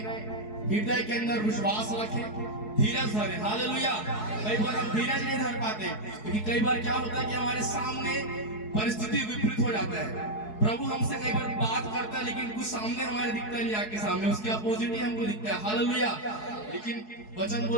हृदय के अंदर विश्वास रखे, धीरज धरे। हालेलुया। कई बार हम धीरज नहीं धर पाते, क्योंकि कई बार क्या होता है कि हमारे सामने परिस्थिति विपरीत हो जाता है। प्रभु हमसे कई बार बात करता है लेकिन कुछ सामने हमारे दिखता नहीं, आके सामने उसके अपोजिट ही हमको दिखता है। हालेलुया। लेकिन वचन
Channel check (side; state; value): right; late; 4.7 ms